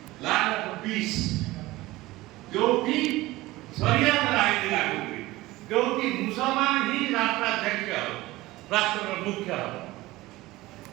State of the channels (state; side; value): quieter; left; 18.7 dB